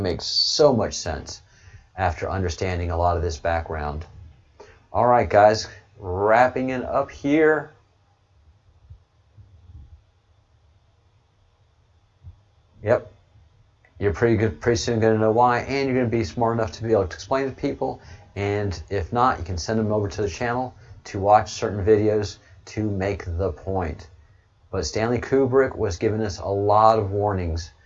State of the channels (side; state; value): both; identical; correlation 1.00